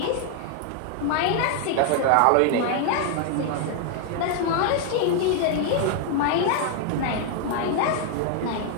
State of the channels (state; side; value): different; both; correlation 0.00